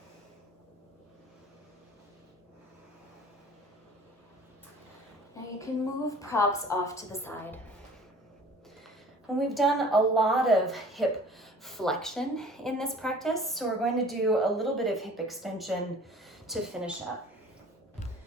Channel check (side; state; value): both; normal; correlation 0.48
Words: Now you can move props off to the side. And we've done a lot of hip flexion in this practice, so we're going to do a little bit of hip extension to finish up.